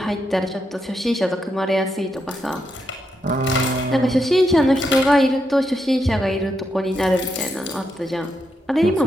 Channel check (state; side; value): normal; both; correlation 0.82